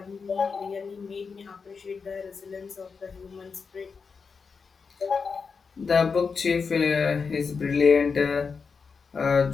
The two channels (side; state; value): right; quieter; 5.3 dB